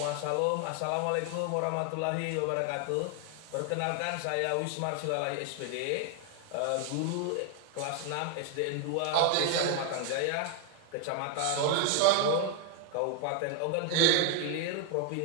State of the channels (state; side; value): different; both; correlation 0.00